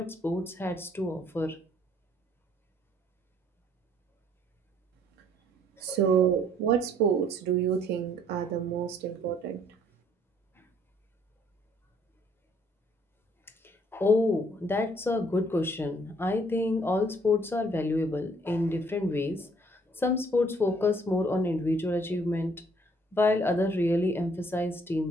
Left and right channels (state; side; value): normal; both; correlation 0.63